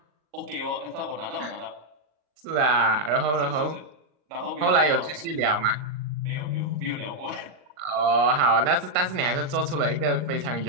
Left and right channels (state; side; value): late; left; 40 ms